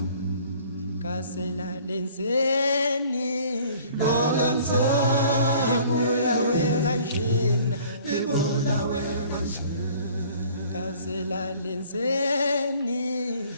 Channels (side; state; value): both; inverted; correlation -0.53